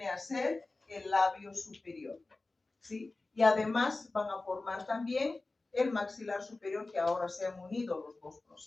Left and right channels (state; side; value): quieter; right; 3.3 dB